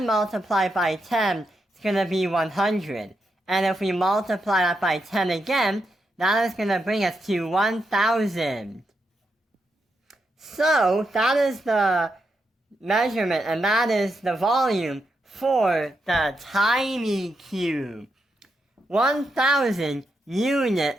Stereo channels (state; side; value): normal; both; correlation 0.83